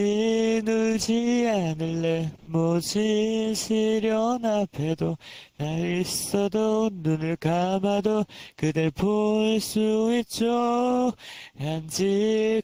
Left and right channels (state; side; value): identical; both; correlation 1.00